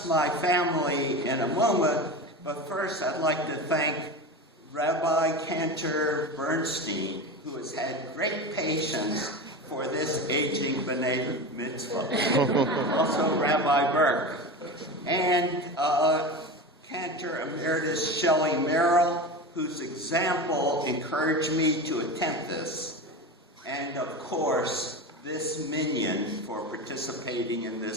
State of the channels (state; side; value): normal; both; correlation 0.26